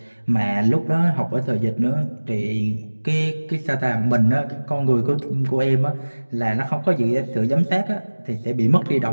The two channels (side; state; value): both; inverted; correlation -1.00